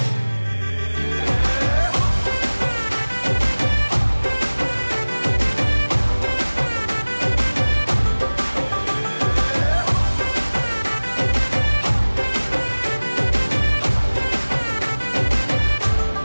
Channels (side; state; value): both; inverted; correlation -1.00